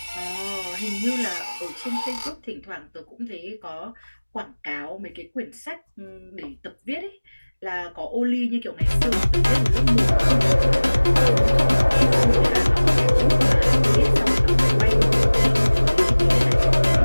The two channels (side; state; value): both; inverted; correlation -1.00